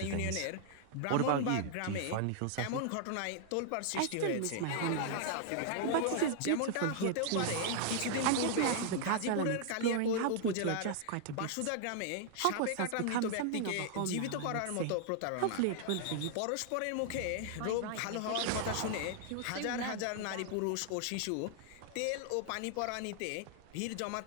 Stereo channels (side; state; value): both; different; correlation -0.01